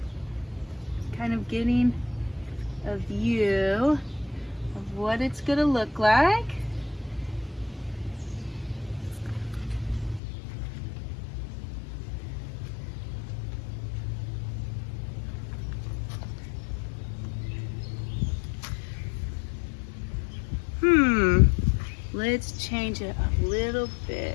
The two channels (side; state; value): right; drops out; at 10.2 s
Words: kind of getting a view of what it's going to look like. Let's change it a little